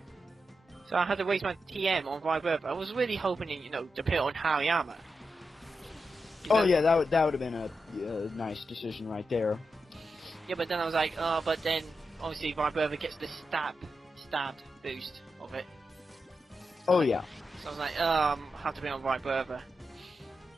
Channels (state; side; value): normal; both; correlation 0.88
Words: So I had to waste my TM on Vibrava. I was really hoping, to put it on Hariyama. Oh yeah, that would have been a nice decision right there. Yeah, but then I was like, but then obviously Vibrava gets the stab boost of it. Oh yeah. So I was like, I have to be on Vibrava.